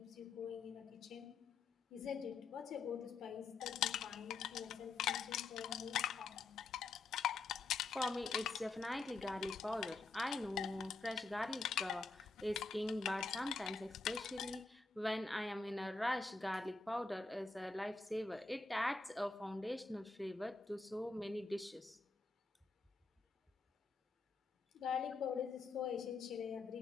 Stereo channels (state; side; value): quieter; right; 3.9 dB